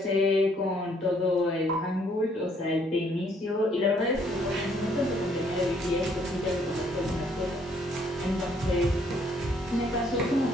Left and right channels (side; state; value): both; normal; correlation 0.66